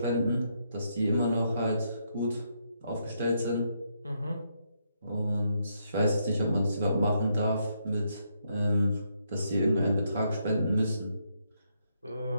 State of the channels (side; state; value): both; inverted; correlation -0.77